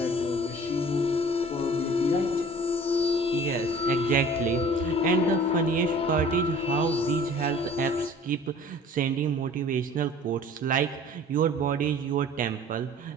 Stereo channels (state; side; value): normal; both; correlation 0.47